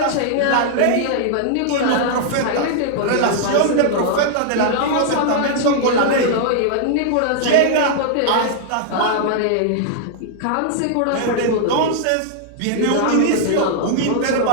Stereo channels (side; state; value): both; different; correlation -0.01